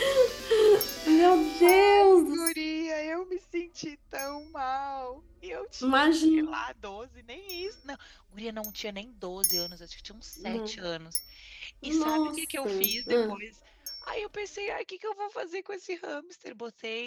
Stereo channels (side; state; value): both; identical; correlation 1.00